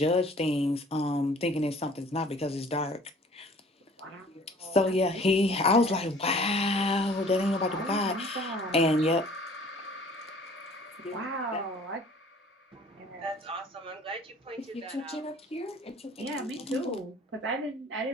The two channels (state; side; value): normal; both; correlation 0.51